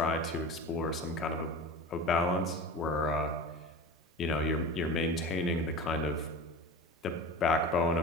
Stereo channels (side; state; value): both; normal; correlation 0.32